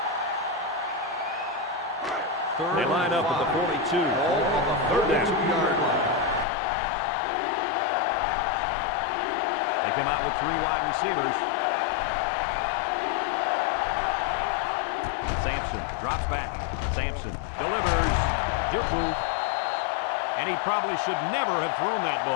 They line up at the 42. Ball on the 32-yard line. They come out with 3 wide receivers. Sampson drops back. Sampson delivers. Juku. And he probably should never have thrown that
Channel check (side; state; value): right; drops out; at 6.5 s